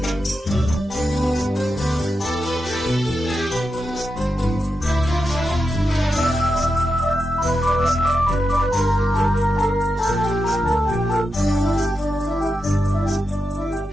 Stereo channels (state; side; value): normal; both; correlation 0.88